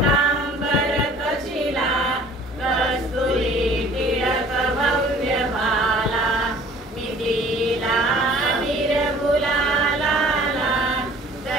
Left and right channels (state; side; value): normal; both; correlation 0.51